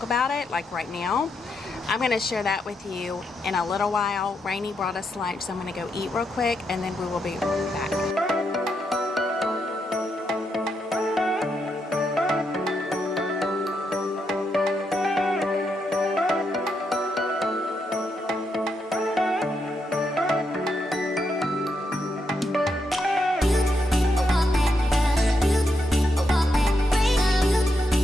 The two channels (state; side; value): normal; both; correlation 0.81